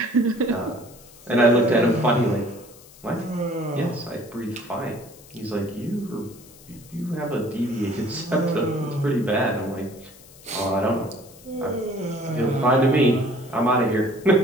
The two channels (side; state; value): left; noise; hiss, 22 dB below the sound